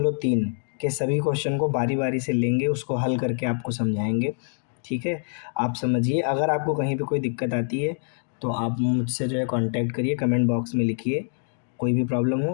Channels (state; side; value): silent; right; 62 dB below the other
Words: के सभी क्वेश्चन को बारी बारी से लेंगे, उसको हल करके आपको समझाएंगे, ठीक है। आप समझिए। अगर आपको कहीं पे कोई दिक्कत आती है तो आप मुझसे जो है कांटेक्ट करिए, कमेंट बॉक्स में लिखिए। कोई भी प्रॉब्लम